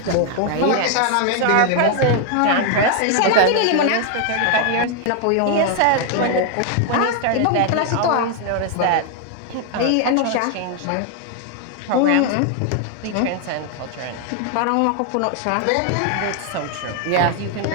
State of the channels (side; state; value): both; different; correlation 0.00